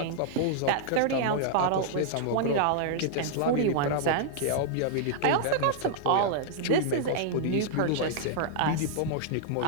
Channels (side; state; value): both; different; correlation -0.01